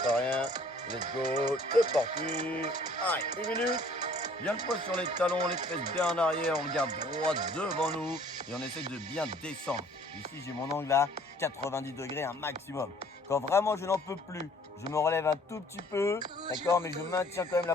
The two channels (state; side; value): normal; both; correlation 0.56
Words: rien. Let's go, c'est parti. Allez, 1 minute. Bien le poids sur les talons, les fesses bien en arrière, on regarde droit devant nous et on essaie de bien descendre. Ici, j'ai mon angle à 90 degrés, un maximum. Quand vraiment je n'en peux plus, je me relève un tout petit peu, d'accord, mais je maintiens quand même la